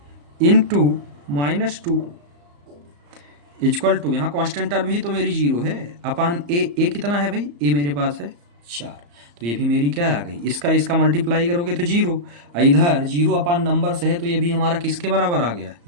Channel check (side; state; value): left; late; 34 ms